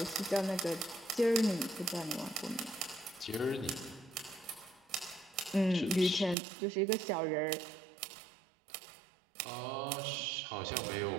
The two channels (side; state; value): left; drops out; at 6.4 s